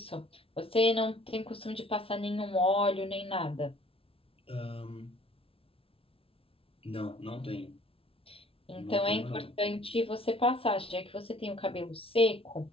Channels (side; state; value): right; late; 0.27 ms